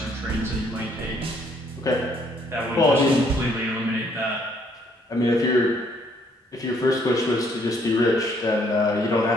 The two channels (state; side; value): normal; both; correlation 0.66